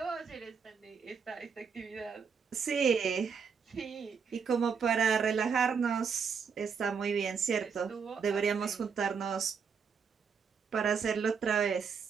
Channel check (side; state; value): left; quieter; 6.1 dB